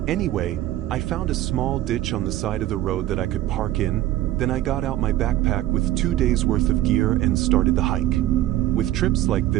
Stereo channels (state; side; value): quieter; left; 14.4 dB